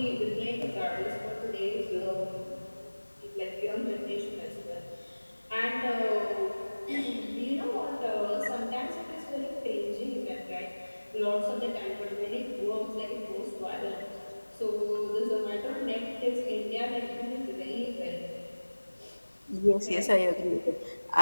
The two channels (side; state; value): both; inverted; correlation -1.00